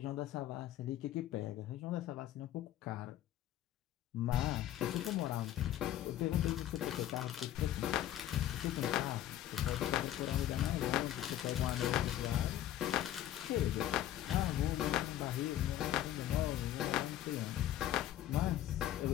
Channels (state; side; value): quieter; right; 12.4 dB